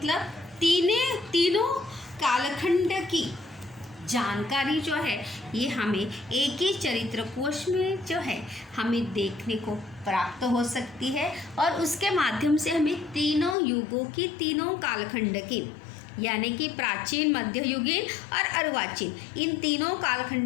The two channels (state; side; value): drops out; right; at 13.6 s